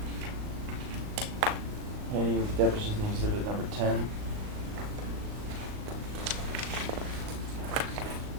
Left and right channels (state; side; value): late; left; 38 ms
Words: Any deposition exhibit number 10?